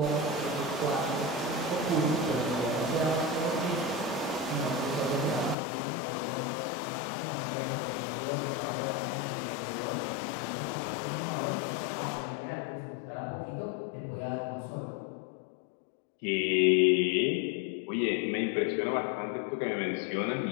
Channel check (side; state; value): right; drops out; at 5.6 s